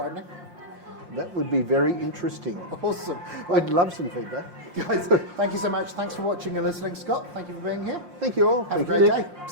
That would be very interesting. Awesome. I'd love some feedback. Guys, thank you so much. Thanks for watching and listening. Scott, thank you for being here. Thank you all. Have Thank a you, great Nick.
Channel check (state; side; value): late; left; 5.7 ms